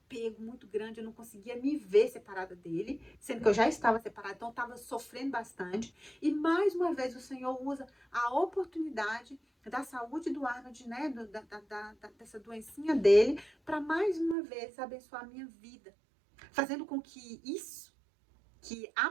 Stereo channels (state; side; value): drops out; left; at 14.4 s